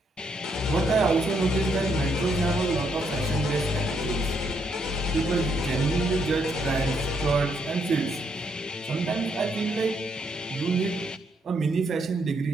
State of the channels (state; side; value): normal; both; correlation 0.74